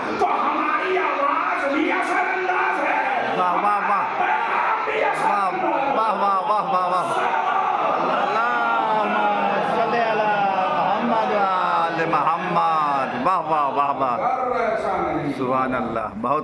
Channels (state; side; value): identical; both; correlation 1.00